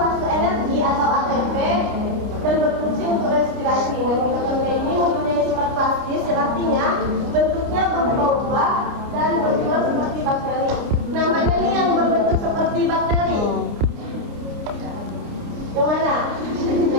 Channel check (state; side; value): late; left; 29 ms